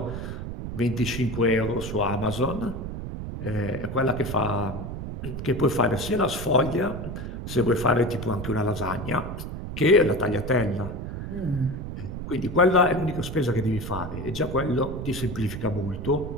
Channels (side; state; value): right; noise; rumble, 7 dB below the sound